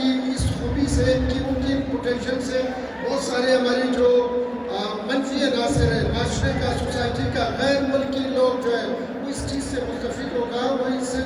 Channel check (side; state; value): both; identical; correlation 1.00